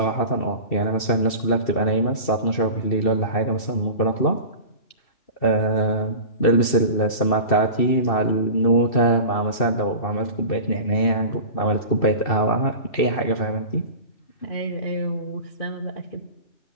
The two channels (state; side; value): late; right; 2.7 ms